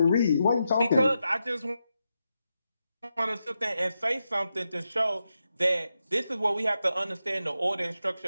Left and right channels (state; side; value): inverted; both; correlation -0.87